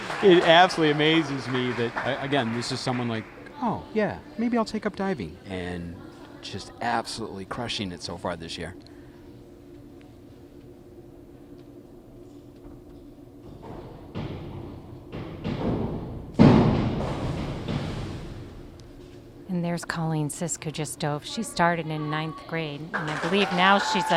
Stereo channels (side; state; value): both; identical; correlation 1.00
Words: absolutely amazes me that, again, this is someone like, oh, yeah, maybe I'll take up diving. And just absolutely crushing it so far this year. And there's Colleen Sisk, who just dove. She started in 9th grade, and I believe now she's